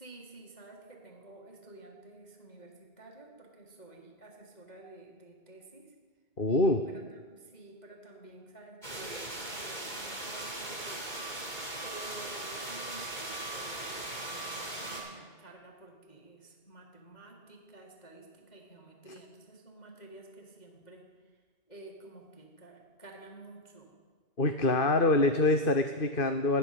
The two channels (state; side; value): late; right; 2.2 ms